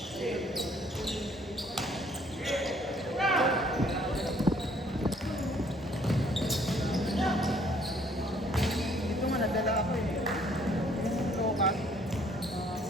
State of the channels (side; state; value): both; normal; correlation 0.62